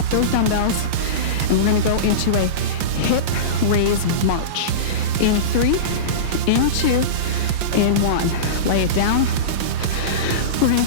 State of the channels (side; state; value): left; late; 5.8 ms